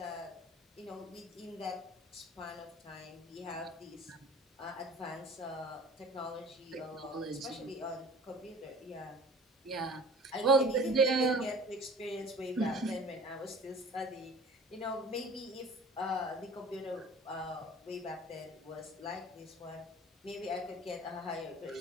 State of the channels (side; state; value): both; normal; correlation 0.45